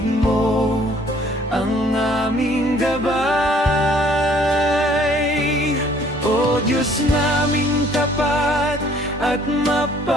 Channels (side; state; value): both; normal; correlation 0.59